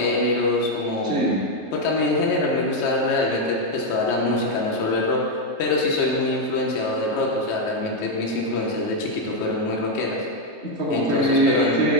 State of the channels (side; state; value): right; late; 3.2 ms